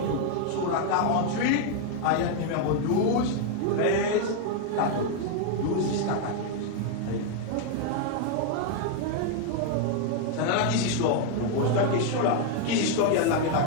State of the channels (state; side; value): different; both; correlation 0.00